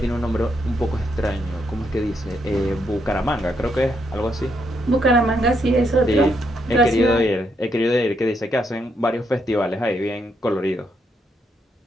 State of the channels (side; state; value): both; normal; correlation 0.77